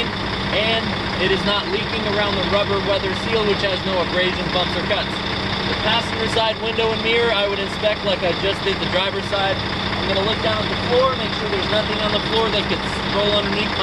and it is not leaking around the rubber weather seal, which has no abrasions, bumps, or cuts. The passenger side window and mirror, I would inspect like I just did the driver's side. I'm gonna look down at the floor, make sure there's nothing on the floor that could roll underneath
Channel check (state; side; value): identical; both; correlation 1.00